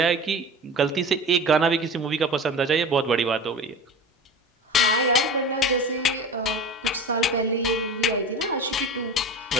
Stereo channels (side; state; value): both; normal; correlation 0.33